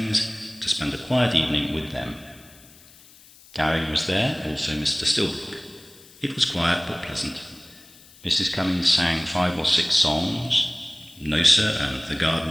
to spend a quiet evening with them. Gowing was there, also Mr. Stilbrook. It was quiet but pleasant. Mrs. Cummings sang 5 or 6 songs, No Sir and The Garden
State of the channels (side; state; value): left; noise; hiss, 24 dB below the sound